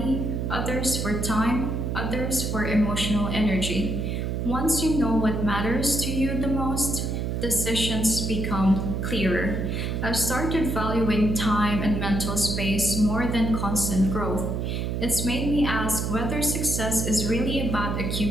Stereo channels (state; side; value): noise; right; hum, 1 dB below the sound